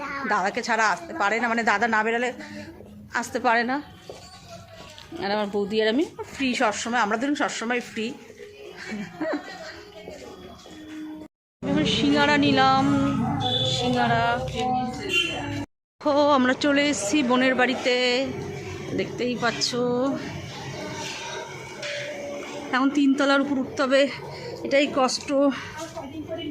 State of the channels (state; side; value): identical; both; correlation 1.00